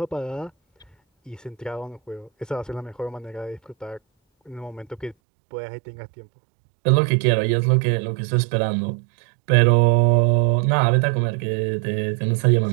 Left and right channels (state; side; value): drops out; left; at 5.2 s